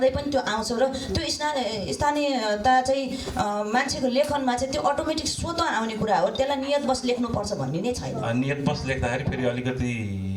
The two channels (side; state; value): both; identical; correlation 1.00